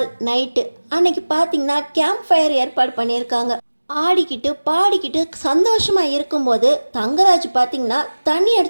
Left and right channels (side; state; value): both; inverted; correlation -1.00